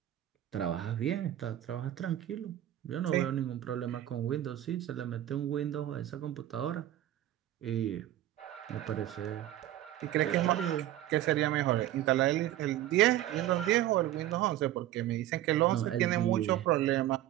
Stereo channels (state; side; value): quieter; left; 13.2 dB